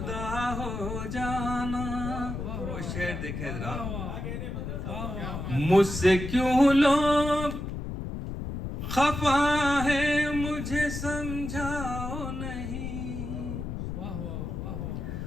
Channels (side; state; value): left; noise; rumble, 5 dB below the sound